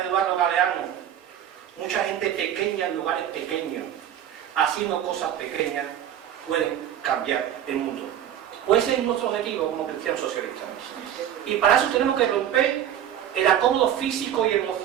Eduardo Galeano: mucha gente pequeña en lugares pequeños, haciendo cosas pequeñas, pueden cambiar el mundo. Pues ese es nuestro objetivo como cristianos socialistas. Y para eso tenemos que romper el acomodo físico y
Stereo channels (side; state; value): left; quieter; 10.4 dB